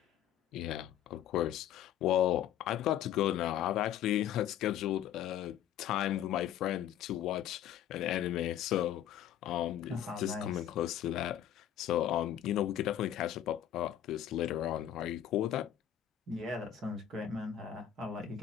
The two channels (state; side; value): quieter; right; 10.9 dB